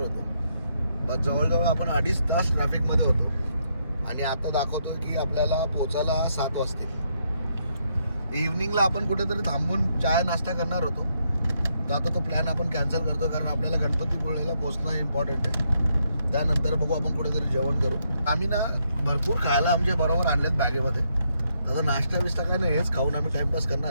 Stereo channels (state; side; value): inverted; both; correlation -0.77